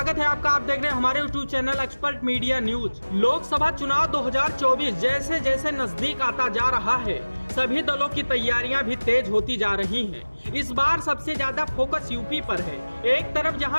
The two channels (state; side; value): inverted; both; correlation -1.00